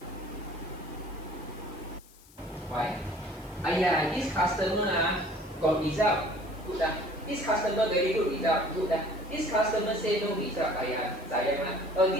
Why? This customer got result, good This customer very good result, good This customer say no result, sayang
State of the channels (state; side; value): noise; left; hiss, 25 dB below the sound